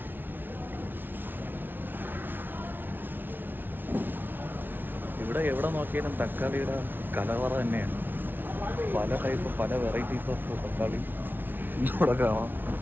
ഇവിടെ എവിടെ നോക്കിയാലും തക്കാളിയുടെ കലവറ തന്നെയാണ്. പല ടൈപ്പ്, പല വെറൈറ്റീസ് ഓഫ് തക്കാളി ഇവിടെ കാണാം.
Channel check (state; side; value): late; left; 0.095 ms